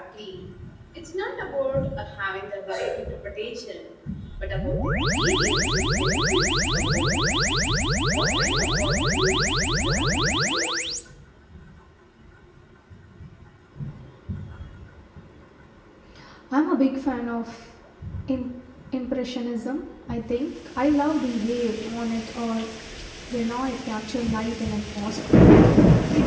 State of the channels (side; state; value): both; identical; correlation 1.00